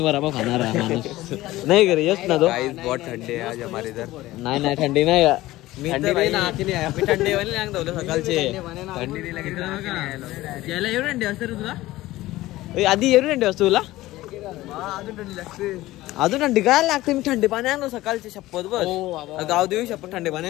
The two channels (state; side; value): quieter; right; 17.2 dB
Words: वर आपण खाणार आहे माणूस नाही करे यस ना तो बहुत थंडी आहे आज हमारे इधर नाही थंडी नाही थंडी नाही थंडी वाली नाही धवलं सकाळचे थंडी नाही लागली याला एवढी थंडी असते रे तुला आधी एवढी थंडी असते तुला अजून थंडी लागते अजून थंडी काय लागते मी थंडी पाणी आणलो सकाळचे शपथ बस गाव देऊ शपथ थंडी पाणी